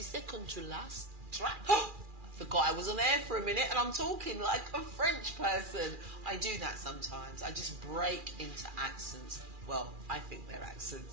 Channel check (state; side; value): late; left; 2.4 ms